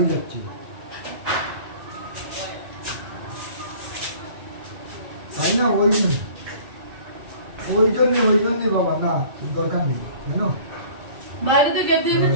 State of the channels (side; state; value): left; late; 2.3 ms